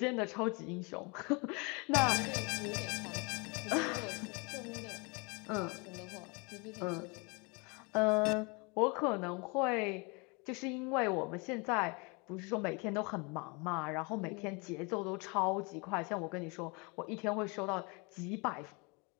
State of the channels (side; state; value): right; quieter; 30.0 dB